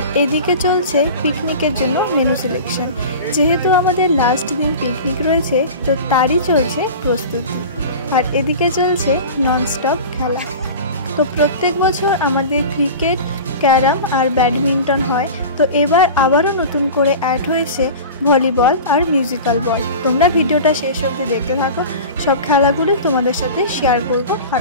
এদিকে চলছে পিকনিকের জন্য মেনু সিলেকশন। যেহেতু আমাদের লাস্ট দিন পিকনিক রয়েছে, তো তারই চলছে প্রস্তুতি। আর এদিকে চলছে ননস্টপ খেলা। তো প্রত্যেক বছর আমাদের ক্রিকেট, ক্যারাম আর ব্যাডমিন্টন হয়। তো এবার আবারও নতুন করে অ্যাড হয়েছে ভলিবল আর মিউজিক্যাল বল। তোমরা ভিডিওটা শেষ অবধি দেখতে থাকো, সব খেলাগুলি তোমাদের সাথে শেয়ার করব, আর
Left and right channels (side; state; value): both; inverted; correlation -0.34